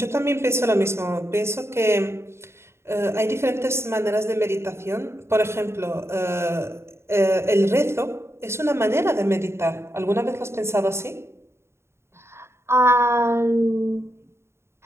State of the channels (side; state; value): left; late; 0.13 ms